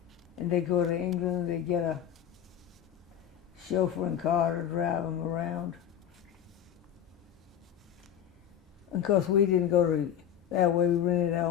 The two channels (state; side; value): quieter; right; 9.7 dB